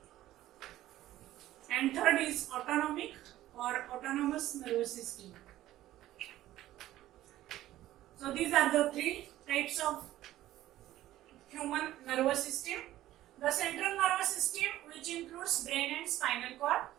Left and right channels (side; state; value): left; quieter; 14.5 dB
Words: and third is autonomic or autonomous nervous system. So these are the three types of human nervous system. The central nervous system, which includes brain and spinal cord.